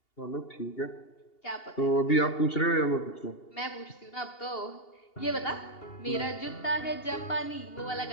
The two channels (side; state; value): right; late; 2.8 ms